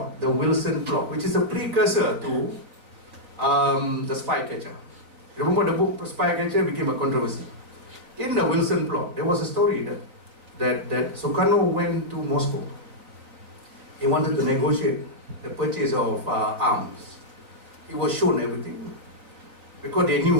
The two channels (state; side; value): late; left; 3.8 ms